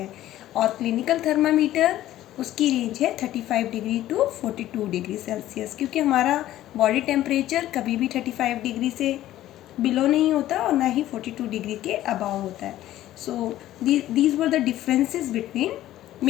और क्लिनिकल थर्मामीटर उसकी रेंज है 35 डिग्री टू 42 डिग्री सेल्सियस, क्योंकि हमारा बॉडी टेम्परेचर कभी भी 35 डिग्री से बिलो नहीं होता और ना ही 42 डिग्री के अबाव होता है. So these were the differences between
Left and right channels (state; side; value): quieter; right; 13.9 dB